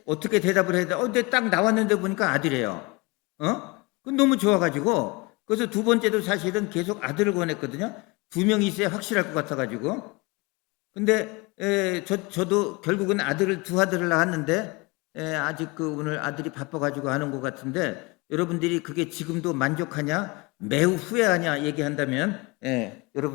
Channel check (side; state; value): right; quieter; 25.5 dB